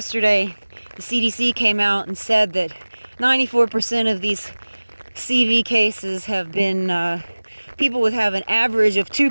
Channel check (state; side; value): inverted; both; correlation -1.00